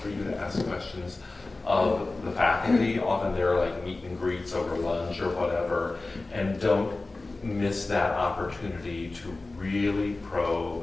for you to ask questions of the faculty. Often they're like meet and greets over lunch or whatever, and don't miss that opportunity to really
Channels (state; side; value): quieter; right; 3.3 dB